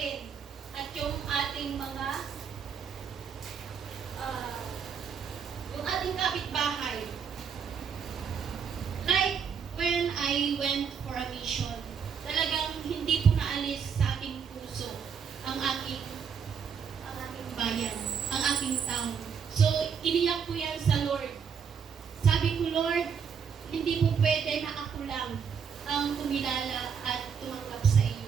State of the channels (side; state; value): left; quieter; 6.8 dB